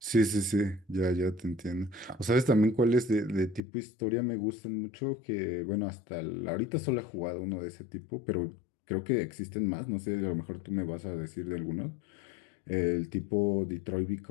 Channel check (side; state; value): right; drops out; at 3.6 s